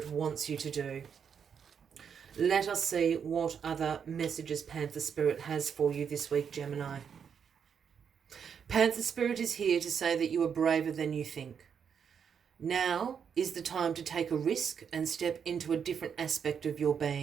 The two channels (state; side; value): quieter; left; 7.3 dB